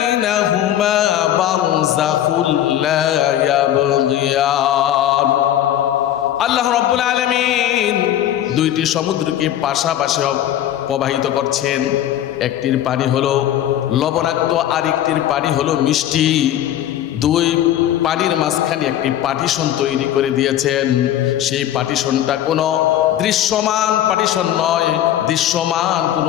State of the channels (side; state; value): right; quieter; 11.8 dB